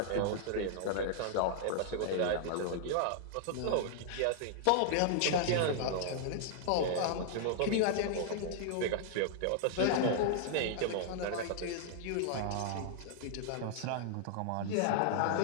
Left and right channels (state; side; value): different; both; correlation -0.01